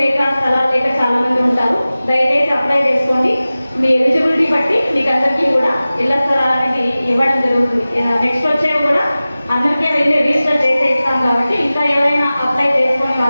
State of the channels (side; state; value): both; inverted; correlation -0.97